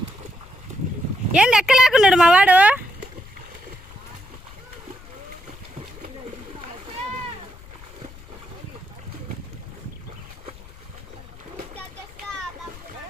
ఏం ఎక్కలేకున్నాడు మా వాడు.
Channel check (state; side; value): noise; left; rumble, 19 dB below the sound